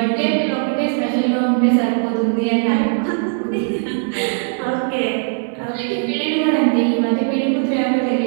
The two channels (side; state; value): left; silent; 67 dB below the other